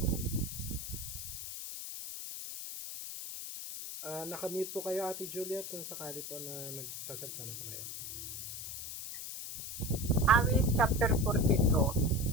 Nakamute po kayo, Ate Juliet, kung sakali po na nagsasalita na po kayo. Awit chapter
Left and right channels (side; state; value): left; noise; hiss, 8 dB below the sound